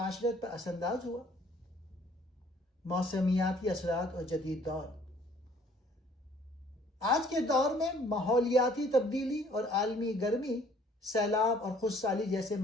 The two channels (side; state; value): both; normal; correlation 0.58